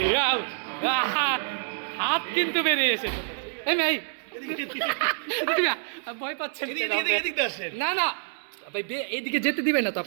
হাত কিন্তু বেরিয়ে এসেছে। এই মেয়ে ভয় পাচ্ছেন কেন? না না ভাই, এইদিকে যেতে দিবেন না তো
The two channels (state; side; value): silent; left; 60 dB below the other